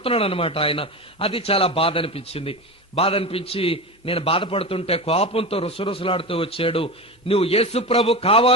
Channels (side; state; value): both; normal; correlation 0.24